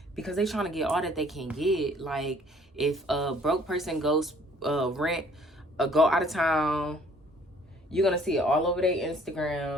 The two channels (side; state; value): both; normal; correlation 0.58